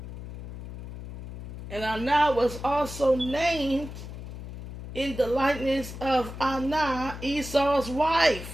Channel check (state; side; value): noise; left; hum, 10 dB below the sound